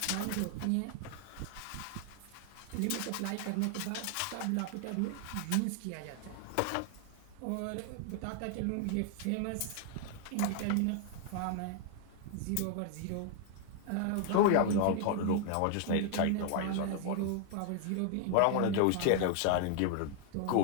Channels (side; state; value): both; different; correlation 0.00